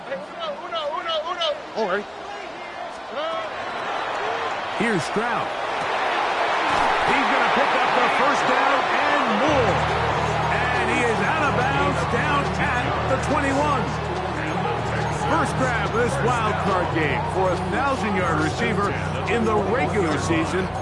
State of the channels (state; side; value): identical; both; correlation 1.00